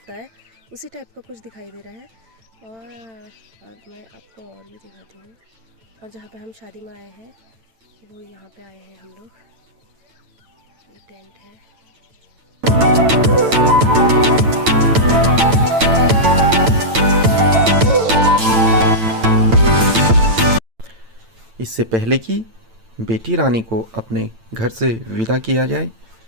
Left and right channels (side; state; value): left; late; 8.9 ms